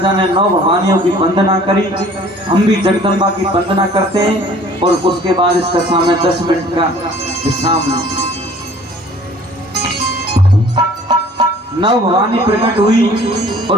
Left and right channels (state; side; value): normal; both; correlation 0.51